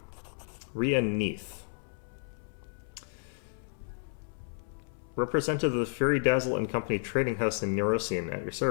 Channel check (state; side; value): silent; right; 56 dB below the other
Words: Rhea Neath. Representative of the Fury Dazzle and Company Trading House in Neurosian at your